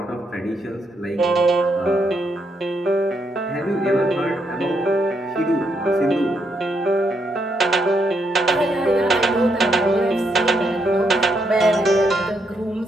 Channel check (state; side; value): normal; both; correlation 0.78